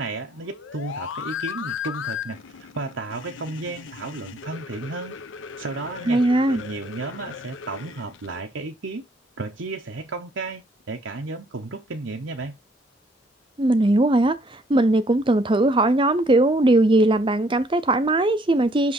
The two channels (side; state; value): both; normal; correlation 0.64